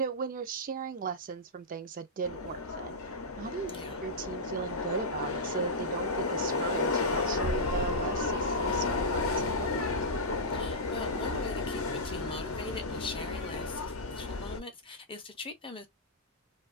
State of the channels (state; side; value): normal; both; correlation -0.12